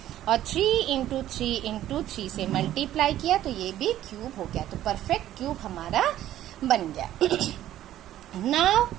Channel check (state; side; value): quieter; left; 12.8 dB